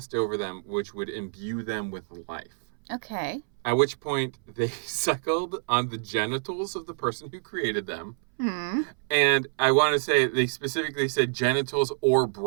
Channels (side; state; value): left; silent; 60 dB below the other